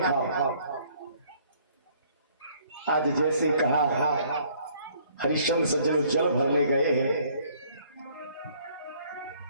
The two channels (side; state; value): both; inverted; correlation -0.61